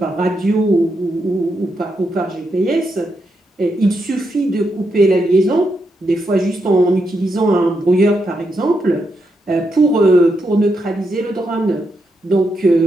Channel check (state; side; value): normal; both; correlation 0.82